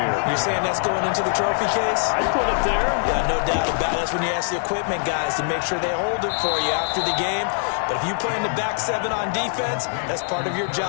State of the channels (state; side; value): silent; right; 64 dB below the other